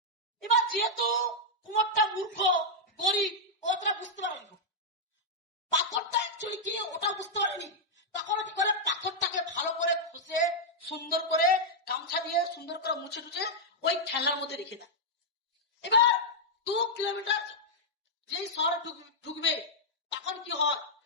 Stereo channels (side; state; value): both; normal; correlation -0.04